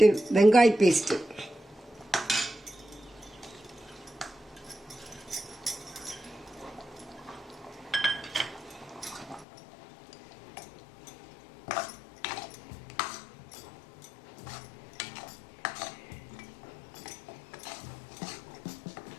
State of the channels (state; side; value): drops out; right; at 9.5 s